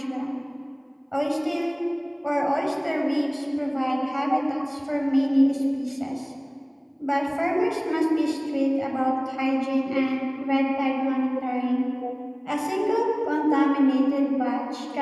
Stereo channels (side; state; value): both; identical; correlation 1.00